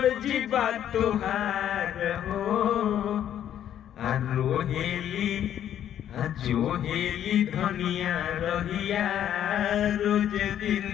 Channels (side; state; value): right; quieter; 10.5 dB